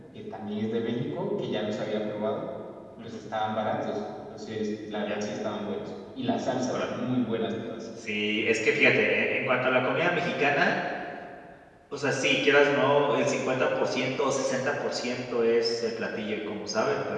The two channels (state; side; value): identical; both; correlation 1.00